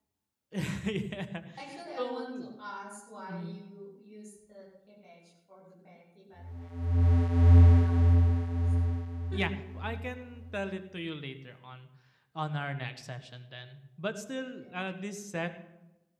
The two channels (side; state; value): both; identical; correlation 1.00